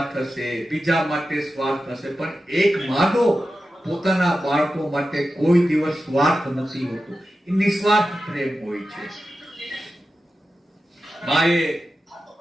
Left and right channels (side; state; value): both; normal; correlation 0.92